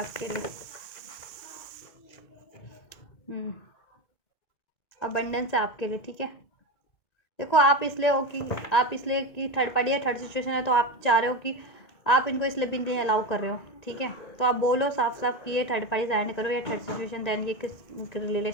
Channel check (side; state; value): right; late; 2.2 ms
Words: लिए। अबंडेंस है आपके लिए, ठीक है। देखो, आप इसलिए कि थर्ड पार्टी या थर्ड सिचुएशन है, तो आप चाह रहे हो कि आप इनको इसलिए भी नहीं अलाउ कर रहे हो, ठीक है। तो आप बोलो साफ साफ कि ये थर्ड पार्टी एंड करो या थर्ड सिचुएशन, देन ये किस